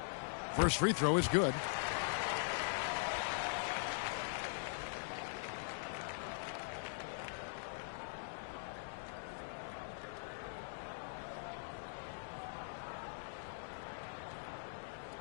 First free throw is good.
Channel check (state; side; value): silent; right; digital silence